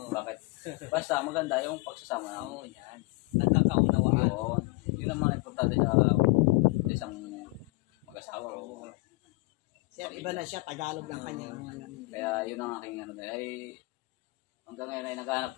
Bakit? Basta maganda yung pagsasama. Yan. Nagkakaunawaan. Yun ang mga importante sa isang mag-asawa. Sir, iba na siya, Tagalog lang kanya. Kaya yun ang aking ay hanggang ngayon ay naghahanap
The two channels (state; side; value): quieter; right; 24.9 dB